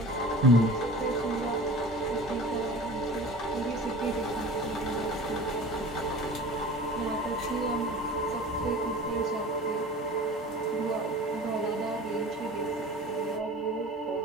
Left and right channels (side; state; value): both; normal; correlation 0.39